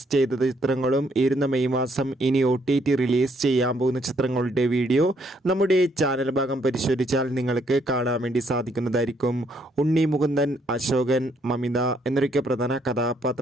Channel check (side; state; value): both; normal; correlation 0.70